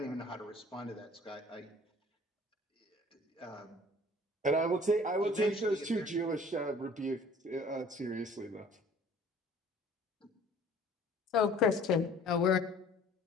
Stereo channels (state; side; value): normal; both; correlation 0.51